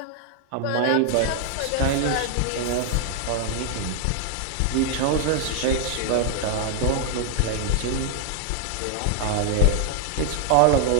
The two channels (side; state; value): both; different; correlation 0.00